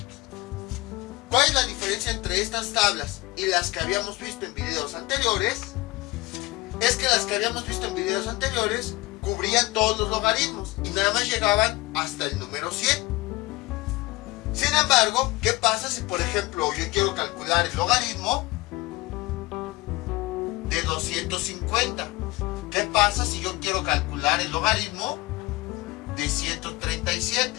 ¿Cuál es la diferencia entre estas tablas y las que habíamos visto en videos anteriores? Es que las que habíamos visto en videos anteriores cubrían todos los logaritmos y nada más llegaban hasta el número 100. Sin embargo, ¿qué pasa si, por ejemplo, yo quiero calcular el logaritmo de 250? ¿Qué pasa si yo quiero calcular el logaritmo de 137?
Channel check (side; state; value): right; quieter; 21.1 dB